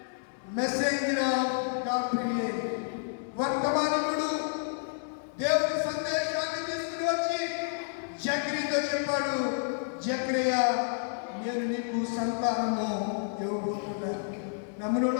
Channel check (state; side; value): silent; right; 58 dB below the other